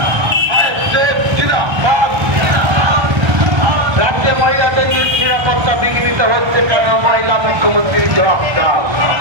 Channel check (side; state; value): left; late; 1.3 ms